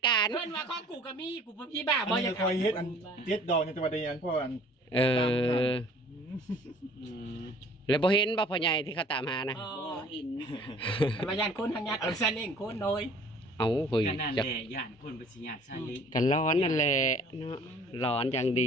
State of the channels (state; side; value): normal; both; correlation 0.52